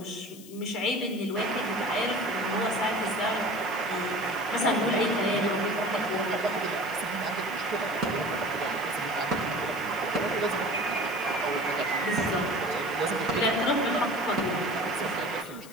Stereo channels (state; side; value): noise; left; hiss, 18 dB below the sound